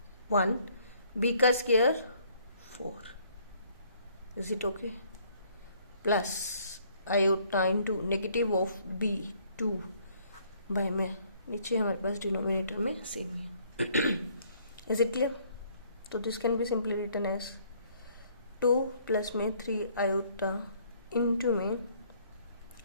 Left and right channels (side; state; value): both; inverted; correlation -0.63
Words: 1, b का square 4. Is it okay? Plus iota into negative of b 2 by में, नीचे हमारे पास डिनोमिनेटर में सेम ही. Is it clear? तो this can be simply written as 2 plus में 3 आयोटा into में